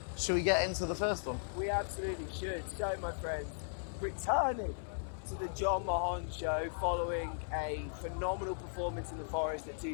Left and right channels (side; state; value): right; silent; 53 dB below the other